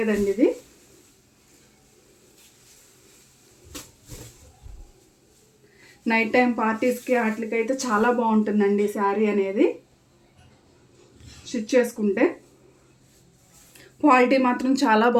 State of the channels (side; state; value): both; identical; correlation 1.00